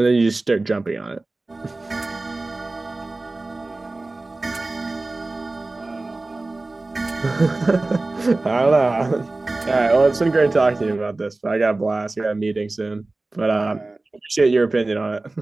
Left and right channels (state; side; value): quieter; left; 3.1 dB